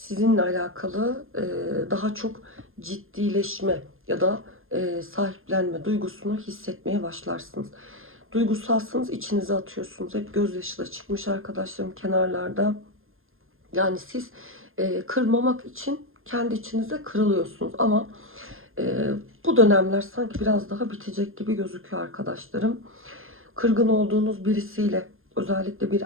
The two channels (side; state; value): left; late; 0.60 ms